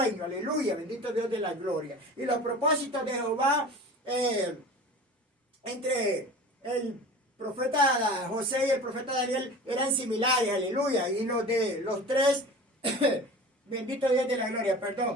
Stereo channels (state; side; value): normal; both; correlation 0.37